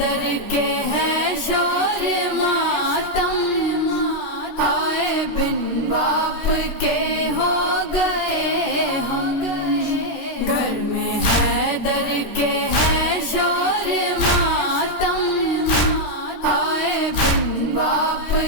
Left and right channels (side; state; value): right; late; 13 ms